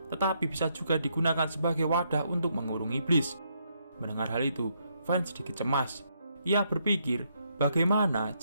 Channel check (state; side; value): inverted; both; correlation -0.75